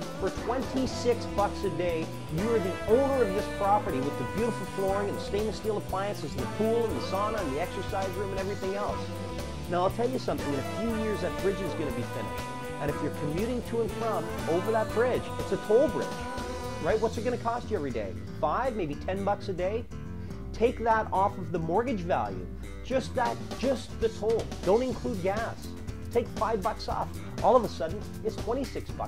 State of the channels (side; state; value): both; identical; correlation 1.00